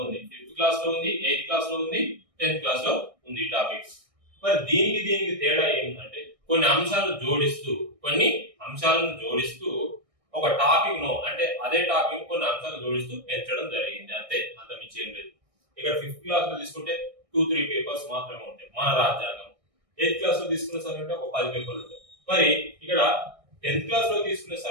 ఉంది, 5th క్లాస్ లో ఉంది, 8th క్లాస్ లో ఉంది, 10th క్లాస్ లో ఉంది ఈ టాపిక్. మరి దీనికి తేడా ఏంటంటే కొన్ని అంశాలను జోడిస్తూ ఒక టాపిక్ ను అంటే అదే టాపిక్ కొన్ని అంశాలను జోడిస్తూ పెంచడం జరిగింది, అంతే, అంత మించి ఏం లేదు. ఇక్కడ 5th క్లాస్ లో తీసుకుంటే 2-3 పేపర్స్ మాత్రమే ఉంటాయి మన రాజ్యాంగం. 8th క్లాస్ లో తీసుకునే సరికంటే ఒక 10 పేపర్లు ఉంటాయి. మరి ఇక్కడ 10th క్లాస్ లో తీసుకునే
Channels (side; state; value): left; late; 1.6 ms